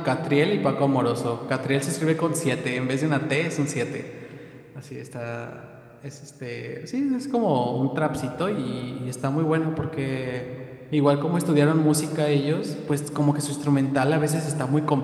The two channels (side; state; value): both; identical; correlation 1.00